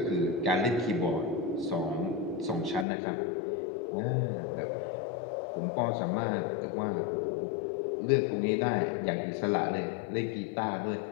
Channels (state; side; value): drops out; right; at 2.9 s